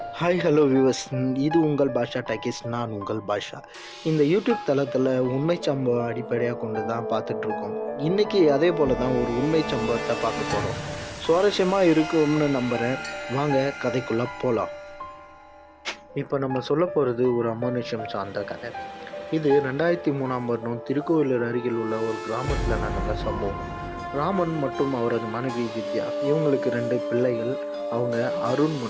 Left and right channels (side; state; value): both; identical; correlation 1.00